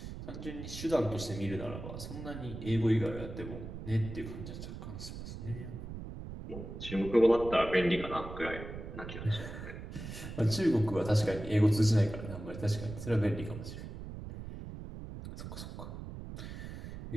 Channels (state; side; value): noise; right; rumble, 9 dB below the sound